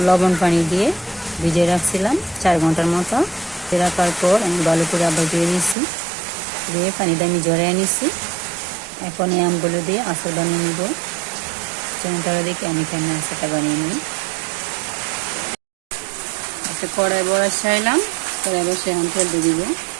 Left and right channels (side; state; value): left; drops out; at 5.8 s